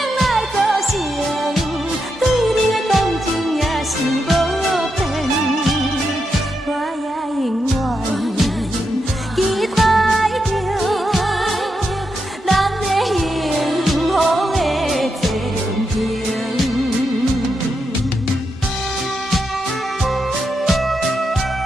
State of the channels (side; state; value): both; normal; correlation 0.84